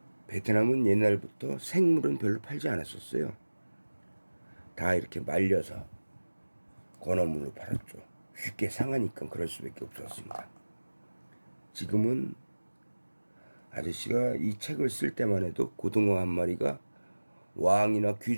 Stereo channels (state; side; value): inverted; both; correlation -1.00